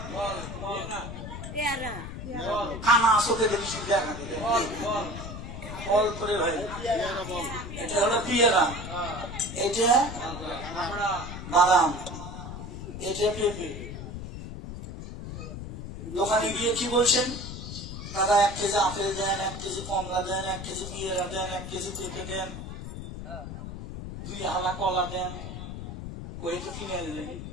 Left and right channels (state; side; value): noise; left; rumble, 8 dB below the sound